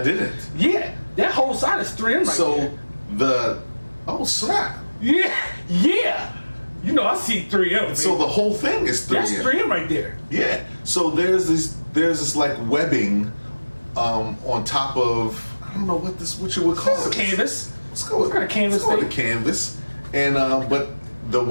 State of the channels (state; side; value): inverted; both; correlation -1.00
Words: Yeah, that whole side is 3M right there. Snap. Yeah. You know I see 3M. Baby. So the whole thing is 3M. That's 3M right there. Yeah. So there's this like webbing on top of, I don't know what you would call it. Canvas. Let's go with canvas. Let's go with canvas. And but the